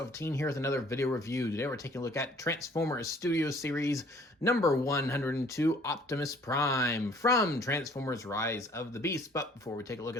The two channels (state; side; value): normal; both; correlation 0.56